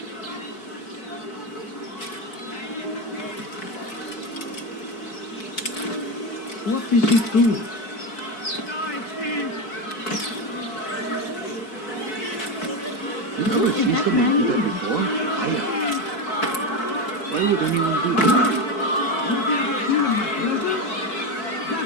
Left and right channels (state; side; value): late; right; 4.6 ms